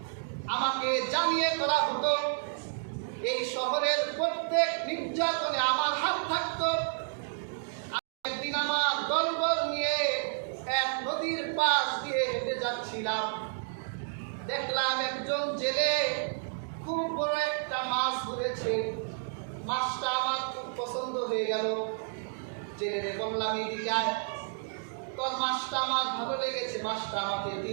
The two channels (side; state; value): left; silent; digital silence